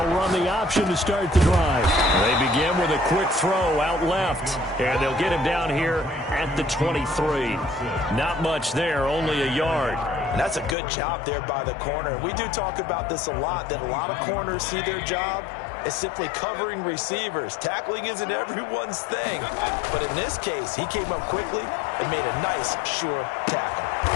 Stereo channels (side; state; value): right; drops out; at 10.8 s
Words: run the option to start the drive. They begin with a quick throw out left. And they'll get him down here at the 23. Not much there, only a yard. And that's a good job there by the corner. We do talk about this a lot, that a lot of corners see their job as simply covering receivers. Tackling isn't everyone's thing. But in this case, he came up quickly and made a nice, sure tackle.